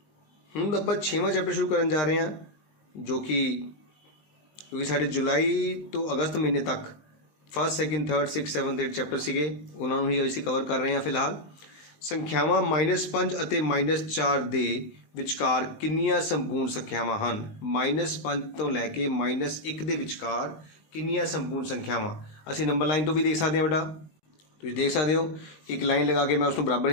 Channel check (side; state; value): right; late; 19 ms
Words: ਹੁਣ ਆਪਾਂ 6ਵਾਂ ਚੈਪਟਰ ਸ਼ੁਰੂ ਕਰਨ ਜਾ ਰਹੇ ਹਾਂ ਜੋ ਕਿ क्योंकि साढ़े जुलाई तो अगस्त महीने तक फस्ट सैकेंड थर्ड 6 7 8 चैप्टर सीगे उन्होंने ही असीं कवर कर रहे हैं। फिलहाल संख्यावां -5 ਅਤੇ -4 ਦੇ ਵਿਚਕਾਰ ਕਿੰਨੀਆਂ ਸੰਪੂਰਨ ਸੰਖਿਆਵਾਂ ਹਨ। -5 ਤੋਂ ਲੈ ਕੇ -1 ਦੇ ਵਿਚਕਾਰ ਕਿੰਨੀਆਂ ਸੰਪੂਰਨ ਸੰਖਿਆਵਾਂ। ਅਸੀਂ ਨੰਬਰ ਲਾइन तो भी देख सकते हैं बेटा। ਤੁਸੀਂ देख सकते हो कि एक लाइन लगा के मैं उसको